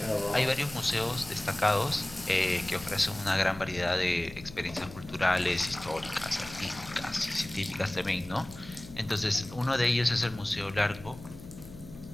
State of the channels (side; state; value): left; noise; hum, 16 dB below the sound